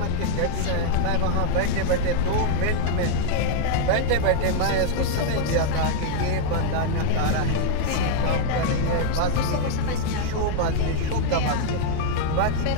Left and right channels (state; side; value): different; both; correlation 0.00